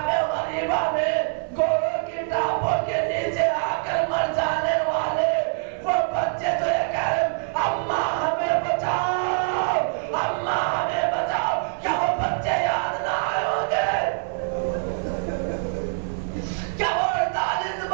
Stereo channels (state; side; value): silent; left; 62 dB below the other